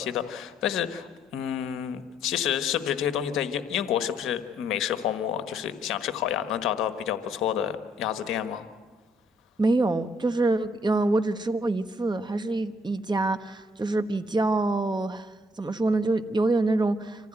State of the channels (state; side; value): normal; both; correlation 0.68